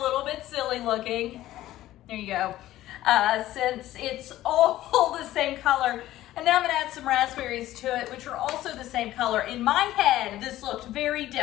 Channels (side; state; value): right; quieter; 14.7 dB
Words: bit silly looking. There you go. Since it's all the same color. And now I'm gonna add some raspberries to it, which are also the same color. In my head, this looked very